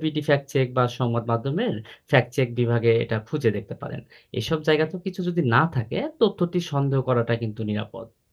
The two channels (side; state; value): both; identical; correlation 1.00